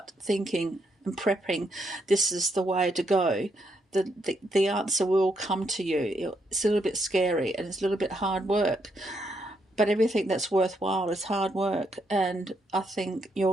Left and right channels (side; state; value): both; normal; correlation 0.77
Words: thinking and prepping, this is the way to go. The answer will come to you. It's a little bit scary and it's a little bit hard work, but everything that's worthwhile is hard work, and I think